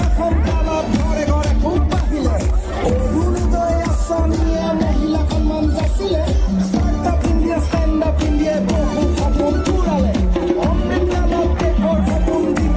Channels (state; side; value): identical; both; correlation 1.00